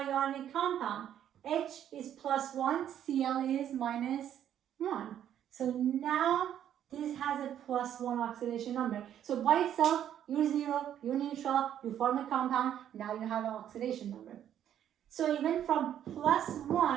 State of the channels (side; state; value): left; quieter; 10.3 dB